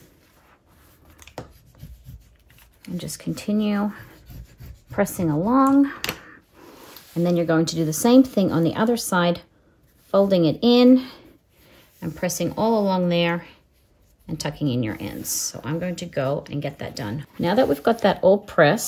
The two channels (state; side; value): identical; both; correlation 1.00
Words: And just continue pressing along. And then you're going to do the same thing on the other side, folding it in and pressing all along there and tucking in your ends. So I'm going to go and get that done. Now that we've got that all